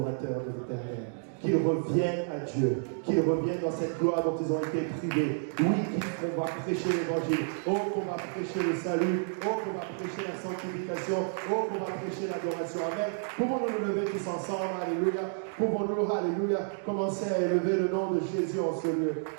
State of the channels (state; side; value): silent; left; digital silence